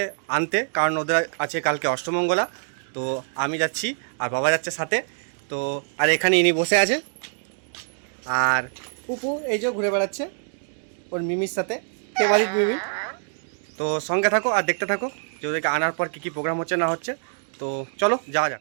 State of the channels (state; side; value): silent; left; digital silence